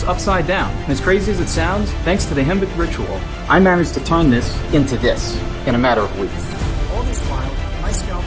upside down. And as crazy as it sounds, thanks to the Himba ritual, I managed to turn this into this in a matter of weeks. All this while, my scalp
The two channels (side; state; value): both; identical; correlation 1.00